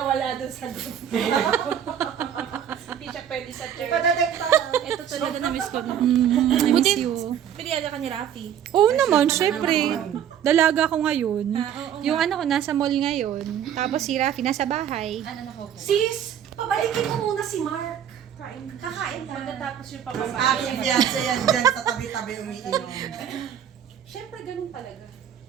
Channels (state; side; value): quieter; left; 9.4 dB